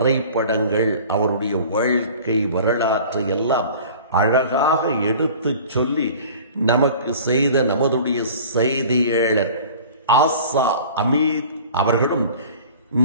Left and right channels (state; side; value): inverted; both; correlation -0.44